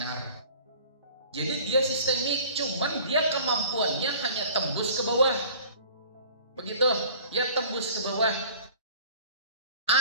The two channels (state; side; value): inverted; both; correlation -0.47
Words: Jadi dia sistemik, cuman dia kemampuannya hanya tembus ke bawah. Begitu, ya tembus ke bawah.